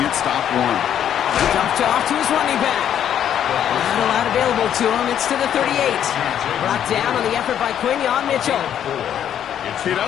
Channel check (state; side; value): quieter; right; 9.8 dB